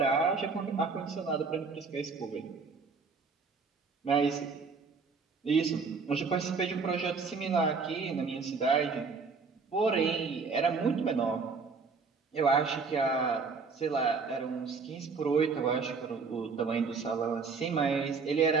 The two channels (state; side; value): quieter; left; 4.8 dB